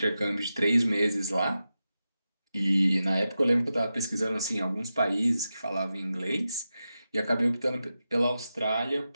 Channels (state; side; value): inverted; both; correlation -0.91